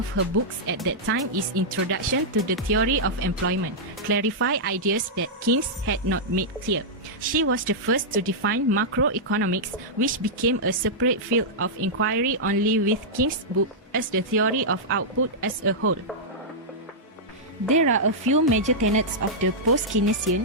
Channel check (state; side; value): normal; both; correlation -0.09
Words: her books at that time is Introduction to the Theory of Employment, clarify ideas that Keynes had not made clear. She was the first to define macroeconomics, which became a separate field of inquiry only with Keynes' book as the theory of output as a whole. There are a few major tenets of the post-Keynesian,